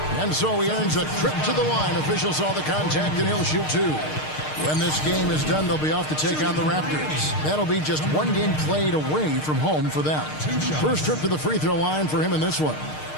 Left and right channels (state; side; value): late; right; 6.5 ms